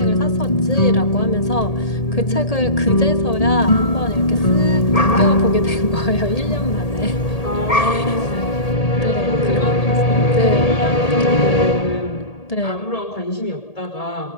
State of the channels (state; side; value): late; right; 1.8 ms